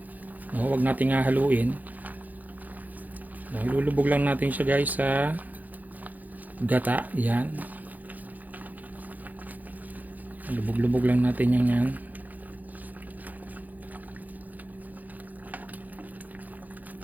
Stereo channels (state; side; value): late; left; 0.081 ms